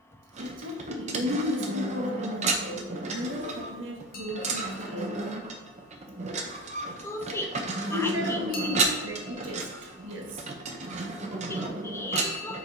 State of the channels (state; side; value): normal; both; correlation 0.24